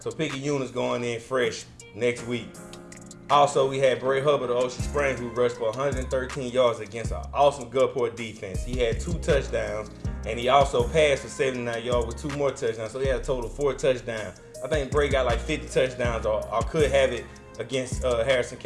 Picayune is going in fresh next week. Also, we had Bray Hubbard of Ocean Springs who rushed for 113 yards against an awesome Gulfport defense. He had 2 touchdowns, and he also passed for 79 yards with 2 more touchdowns, so he had a total of 4 touchdowns. I think Bray got like 50 touchdowns or could have it against Harrison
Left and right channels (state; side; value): identical; both; correlation 1.00